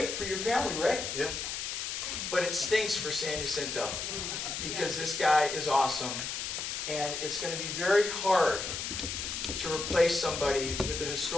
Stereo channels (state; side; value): noise; left; hiss, 4 dB below the sound